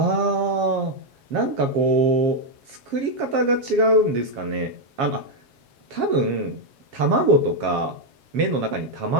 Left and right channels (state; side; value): late; left; 7.3 ms